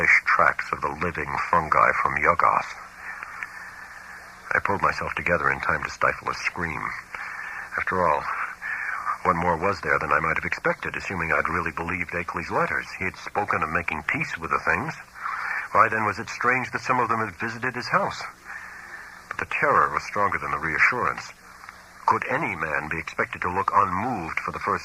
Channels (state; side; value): identical; both; correlation 1.00